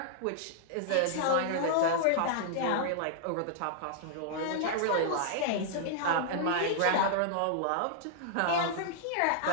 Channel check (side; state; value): both; different; correlation -0.01